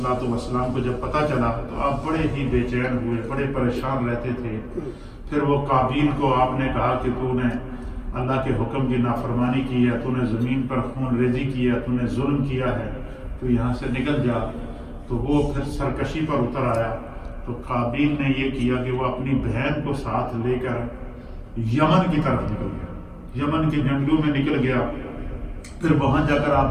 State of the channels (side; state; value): both; identical; correlation 1.00